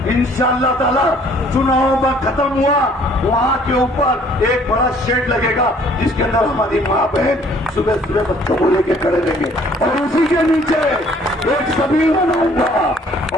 इंशाअल्लाह ताला चुनाव में खत्म हुआ, वहाँ के ऊपर एक बड़ा शेड लगेगा जिसके अंदर हमारी माँ बहन सुबह सुबह बच्चों को लेके खड़े रहेंगे, और उसी के नीचे एक सबील बनाऊंगा,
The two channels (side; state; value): both; normal; correlation 0.58